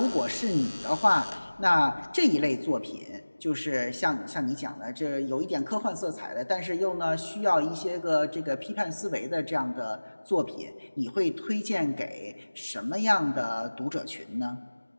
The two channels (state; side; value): inverted; both; correlation -1.00